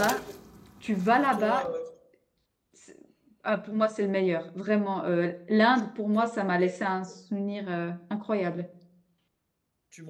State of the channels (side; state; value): both; identical; correlation 1.00